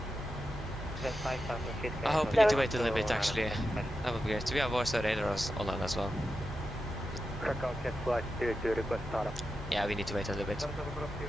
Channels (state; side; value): normal; both; correlation 0.90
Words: I hope we need to wait a little bit actually. That would be great. We have voice radars online as well. Krakow, check flight 22, request startup. Yeah, we need to wait a little bit.